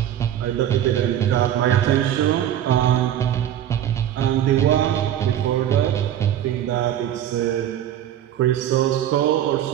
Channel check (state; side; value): quieter; left; 11.0 dB